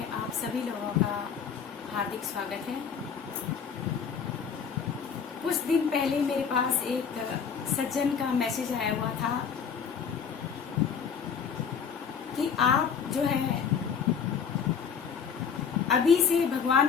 आप सभी लोगों का हार्दिक स्वागत है। कुछ दिन पहले मेरे पास एक सज्जन का मैसेज आया हुआ था कि आप जो है अभी से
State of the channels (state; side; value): quieter; right; 6.9 dB